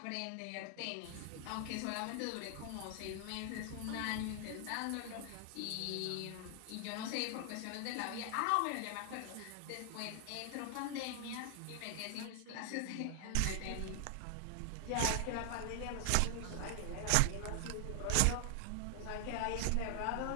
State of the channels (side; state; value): both; different; correlation 0.00